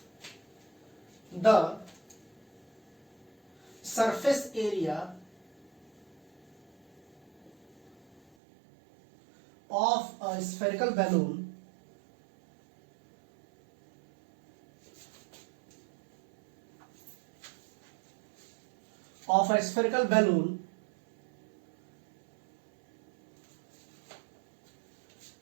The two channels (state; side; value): drops out; left; at 8.2 s